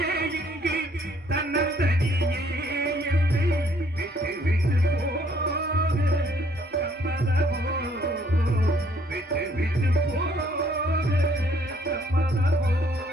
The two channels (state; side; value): normal; both; correlation 0.64